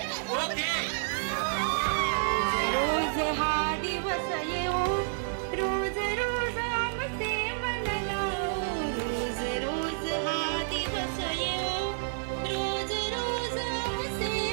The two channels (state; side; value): silent; left; digital silence